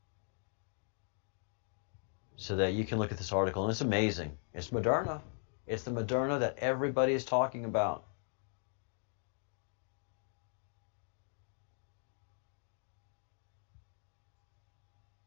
so that you can look at this article. And it's amazing. It's Moderna. It's the Moderna that everybody is talking about.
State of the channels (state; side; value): silent; right; 52 dB below the other